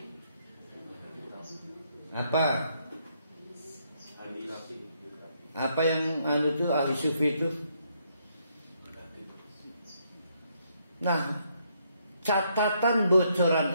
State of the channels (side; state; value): both; inverted; correlation -0.73